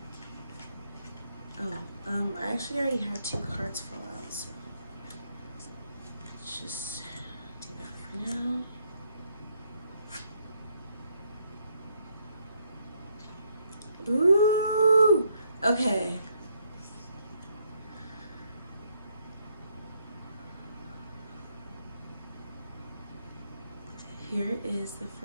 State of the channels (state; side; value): inverted; both; correlation -0.73